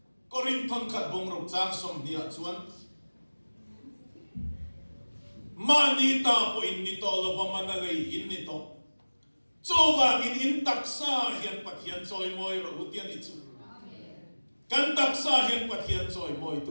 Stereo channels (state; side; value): inverted; both; correlation -1.00